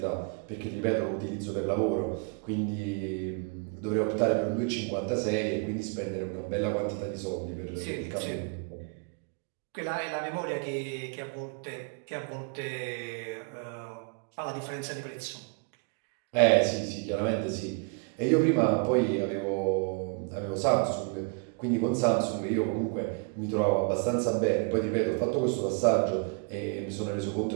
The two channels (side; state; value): left; quieter; 35.5 dB